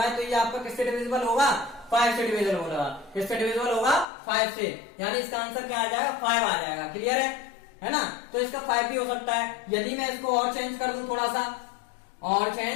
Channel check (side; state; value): right; drops out; at 4.0 s